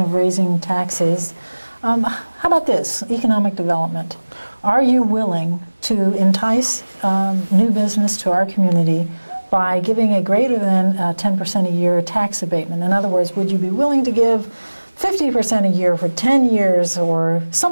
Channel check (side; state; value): both; inverted; correlation -1.00